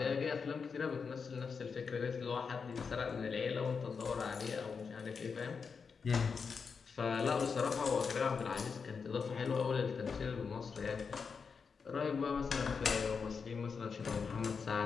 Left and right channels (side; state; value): right; quieter; 5.6 dB